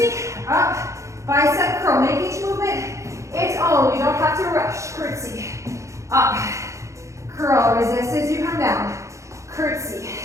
Up. Bicep curl. Make each movement its own. You don't have to rush. Curtsy. Up. Curl. Resist as you come down. Curtsy.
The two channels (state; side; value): late; left; 0.15 ms